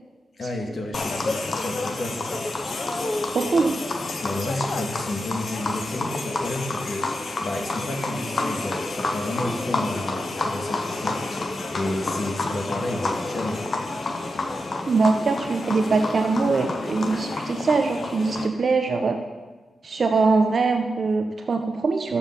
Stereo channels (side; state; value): both; normal; correlation 0.88